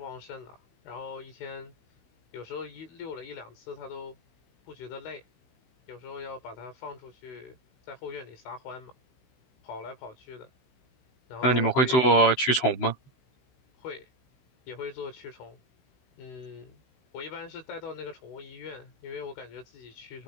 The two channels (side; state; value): right; late; 16 ms